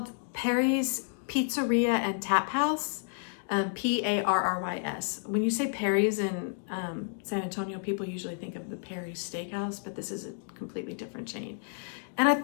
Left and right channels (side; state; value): right; silent; digital silence